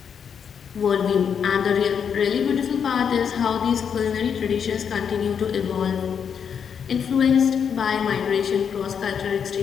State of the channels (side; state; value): right; quieter; 7.3 dB